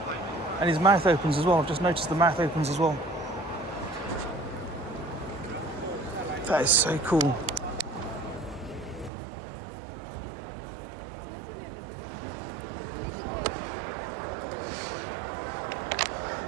And his mouth opens as well. I've just noticed the mouth opens as well. That is so cool.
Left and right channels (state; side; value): drops out; left; at 9.1 s